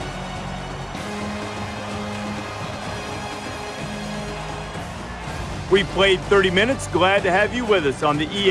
We played 30 minutes. Glad to have you with us on the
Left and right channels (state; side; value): identical; both; correlation 1.00